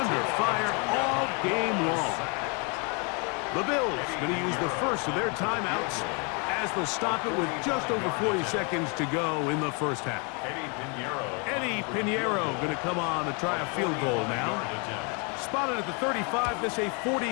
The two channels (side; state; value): right; quieter; 34.4 dB